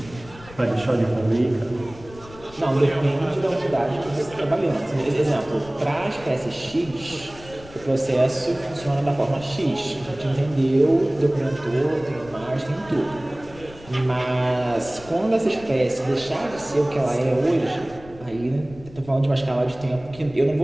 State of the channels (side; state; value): left; noise; rumble, 19 dB below the sound